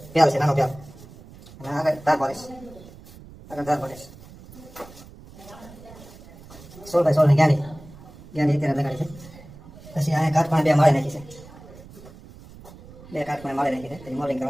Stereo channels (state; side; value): noise; right; rumble, 19 dB below the sound